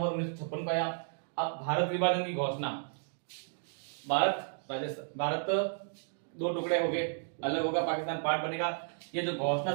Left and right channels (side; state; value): left; silent; digital silence